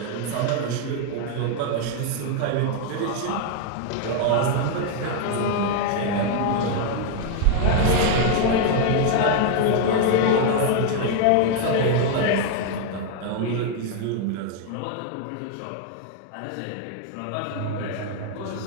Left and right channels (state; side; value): different; both; correlation 0.00